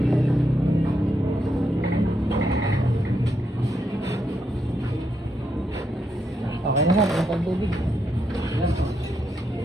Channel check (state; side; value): normal; both; correlation 0.80